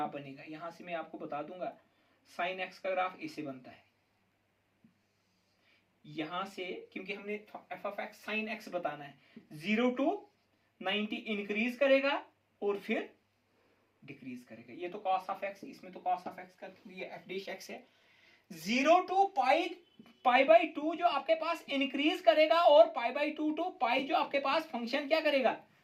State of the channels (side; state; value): both; identical; correlation 1.00